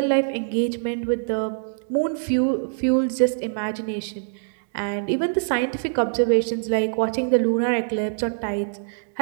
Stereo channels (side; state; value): left; silent; digital silence